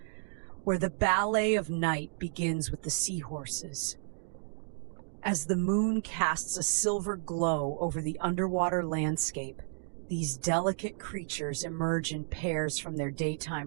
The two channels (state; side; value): silent; left; digital silence